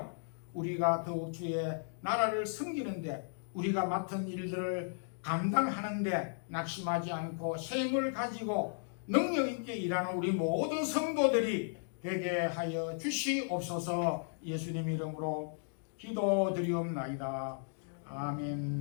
우리가 더욱 주의 나라를 섬기는데 우리가 맡은 일들을 감당하는데 낙심하지 않고 새 힘을 가지고 능력 있게 일하는 우리 모든 성도들이 되게 하여 주시옵소서. 예수님 이름으로 기도드리옵나이다.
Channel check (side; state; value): right; silent; digital silence